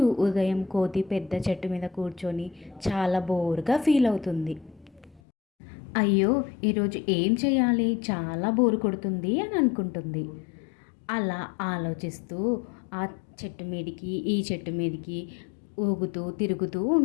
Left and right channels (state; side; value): drops out; right; at 5.2 s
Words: ఉదయం కోతి పెద్ద చెట్టు మీద కూర్చొని చాలా బోరుగా ఫీల్ అవుతుంది. అయ్యో, ఈరోజు ఏం చేయాలి, చాలా బోరు కొడుతుంది అని అనుకుంటుంది. అలా ఆలోచిస్తూ ఆ చెట్టు మీదికి ఈ చెట్టు మీదికి ఊగుతూ తిరుగుతూ